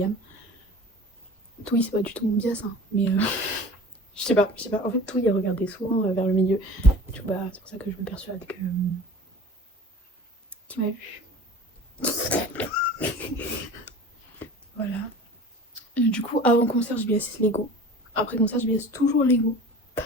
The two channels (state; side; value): normal; both; correlation 0.40